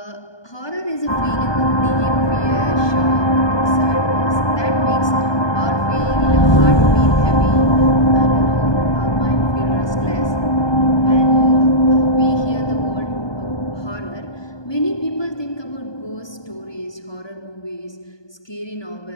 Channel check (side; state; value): right; late; 1.2 ms